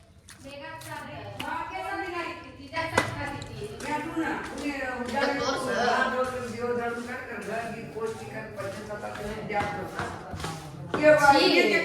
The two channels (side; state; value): both; identical; correlation 1.00